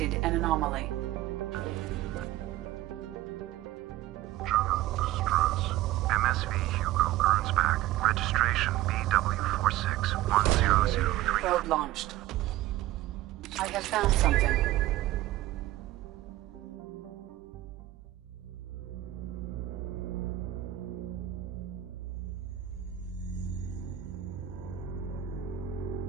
an anomaly. MSV Hugo Gernsback. Registration BW461003. Probe launched. I have found something.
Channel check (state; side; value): quieter; left; 14.8 dB